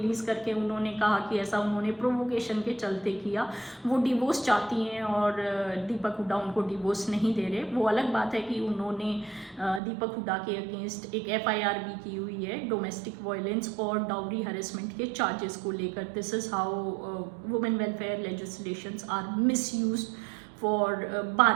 करके उन्होंने कहा कि ऐसा उन्होंने प्रोवोकेशन के चलते किया। वो डिवोर्स चाहती हैं और दीपक हुडा उनको डिवोर्स नहीं दे रहे। वो अलग बात है कि उन्होंने दीपक हुडा के अगेंस्ट एक FIR भी की हुई है डोमेस्टिक वायलेंस और डाउरी हरेसमेंट के चार्जेस को लेकर। This is how women welfare legislations are misused for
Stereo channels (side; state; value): left; drops out; at 9.8 s